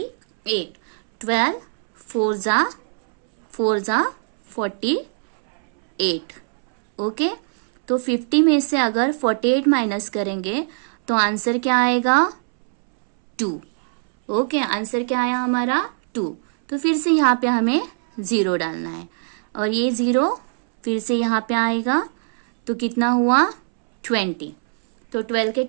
12 4 * 48। ओके, तो 50 में से अगर 48 माइनस करेंगे तो आंसर क्या आएगा 2। ओके, आंसर क्या आया हमारा 2। तो फिर से यहाँ पे हमें 0 डालना है और ये 0 फिर से यहाँ पे आएगा, तो कितना हुआ 20। तो 12 के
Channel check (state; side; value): silent; left; 65 dB below the other